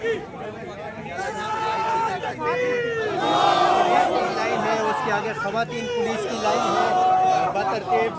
लाइन है, उसके आगे खवातीन पुलिस की लाइन है। बतरतीब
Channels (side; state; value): both; identical; correlation 1.00